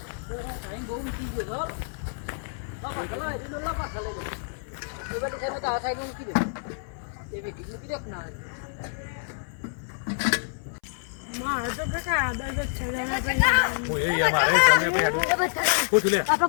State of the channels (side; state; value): right; silent; 60 dB below the other